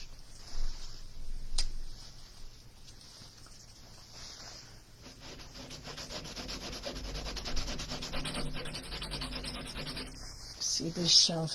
See this shelf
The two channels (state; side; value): identical; both; correlation 1.00